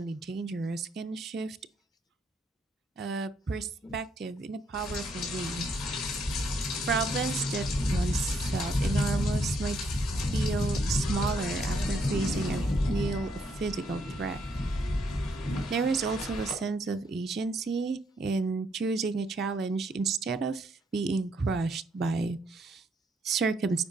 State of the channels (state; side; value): normal; both; correlation 0.73